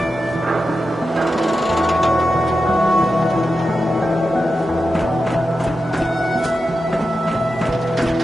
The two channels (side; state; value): both; normal; correlation 0.90